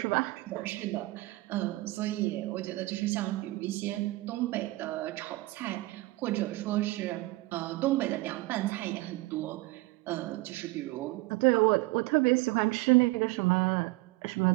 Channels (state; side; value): quieter; left; 20.7 dB